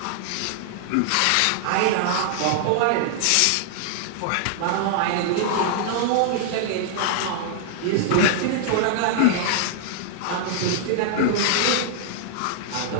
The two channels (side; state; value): both; different; correlation -0.01